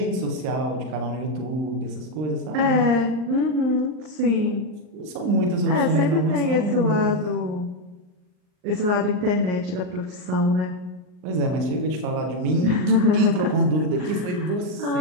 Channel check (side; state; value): left; late; 39 ms